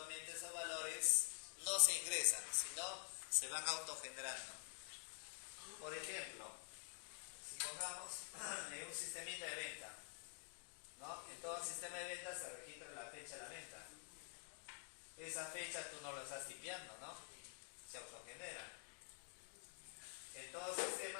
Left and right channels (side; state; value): right; silent; digital silence